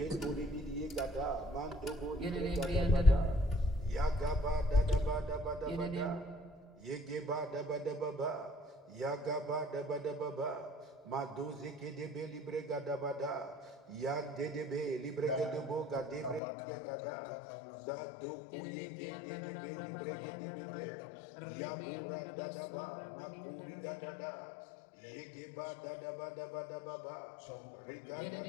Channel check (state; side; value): drops out; right; at 16.4 s